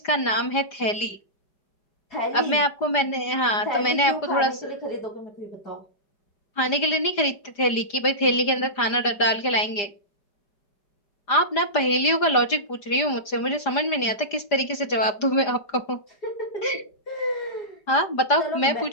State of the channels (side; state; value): right; late; 5.0 ms